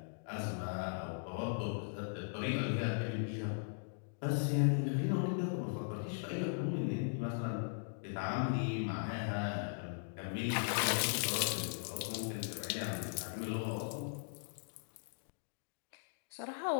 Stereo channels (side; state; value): right; silent; digital silence